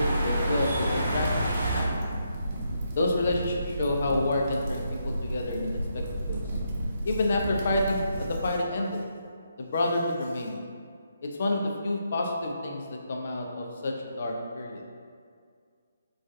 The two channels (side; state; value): both; inverted; correlation -0.79